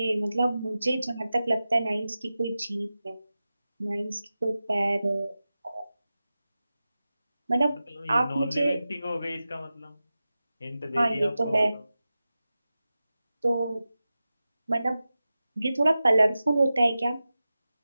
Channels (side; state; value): both; inverted; correlation -0.94